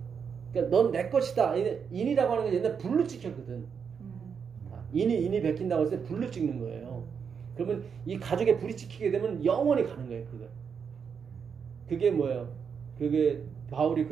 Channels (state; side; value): quieter; left; 6.6 dB